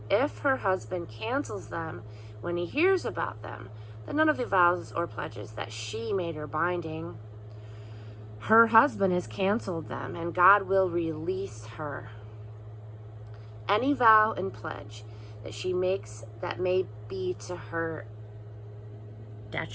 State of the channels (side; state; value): both; identical; correlation 1.00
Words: if her husband cancels them when he hears about them, then none of the vows or pledges that she made are binding. Her husband has canceled them, and God will release her. Any vow and pledge that she makes that may be to her